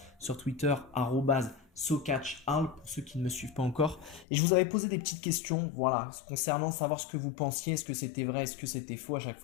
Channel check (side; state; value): right; drops out; at 4.2 s